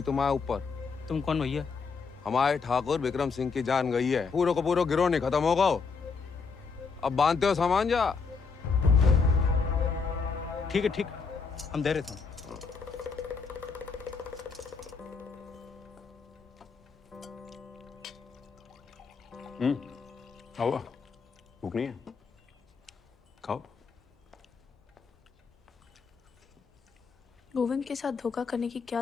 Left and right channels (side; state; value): right; quieter; 5.1 dB